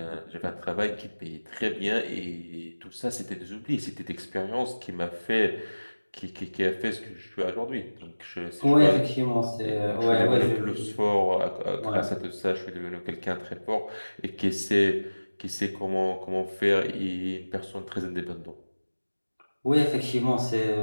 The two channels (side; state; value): both; inverted; correlation -1.00